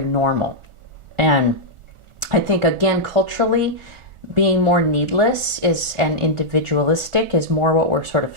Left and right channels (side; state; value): left; late; 1.4 ms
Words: normal. And I think, again, culturally, being more needless and individualistic is more what we're sort of